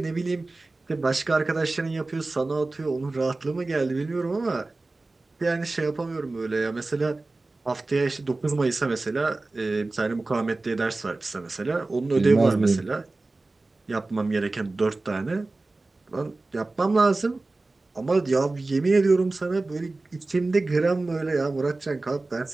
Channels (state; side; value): quieter; left; 3.2 dB